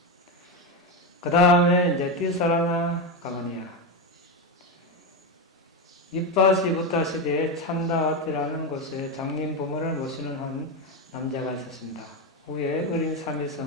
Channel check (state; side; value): normal; both; correlation 0.12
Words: 그 다음에 이제 띠사라나 가마니아. 이빠시 부타 시대에 찬다와티라는 곳에 장님 부모를 모시는 한 남자가 있었습니다. 후에 어린